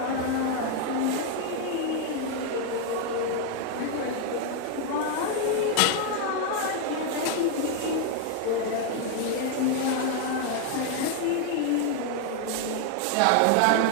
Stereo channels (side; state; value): both; different; correlation 0.01